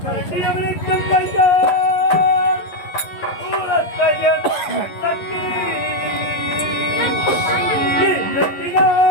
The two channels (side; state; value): right; late; 11 ms